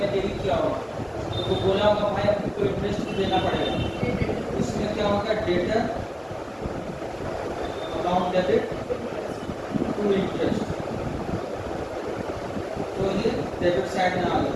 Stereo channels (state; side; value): identical; both; correlation 1.00